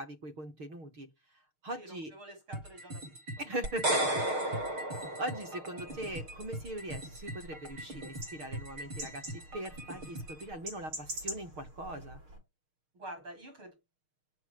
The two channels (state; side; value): late; left; 6.5 ms